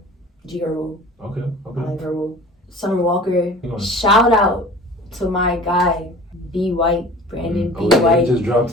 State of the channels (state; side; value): normal; both; correlation 0.43